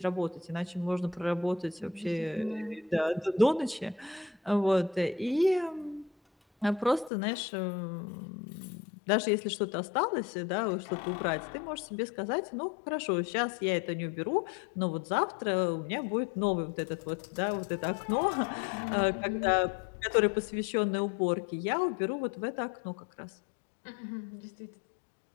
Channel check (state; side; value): drops out; right; at 7.1 s